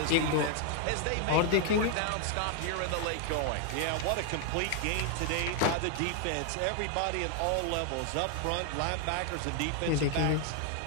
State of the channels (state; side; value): different; both; correlation 0.00